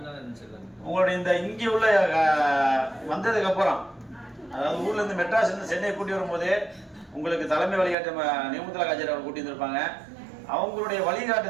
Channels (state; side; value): drops out; left; at 8.0 s